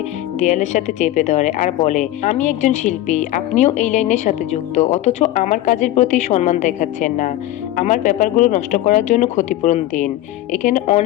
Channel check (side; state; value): right; quieter; 14.5 dB